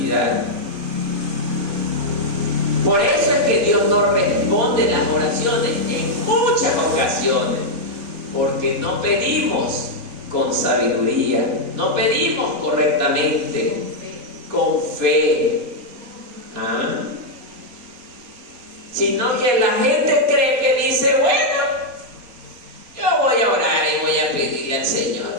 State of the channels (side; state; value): left; late; 4.2 ms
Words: Por eso es que Dios no responde las oraciones en muchas ocasiones, porque no pedimos con sabiduría, no pedimos correctamente, con fe. Sino que la gente cree que dice: bueno, yo voy a orar y voy a pedirle al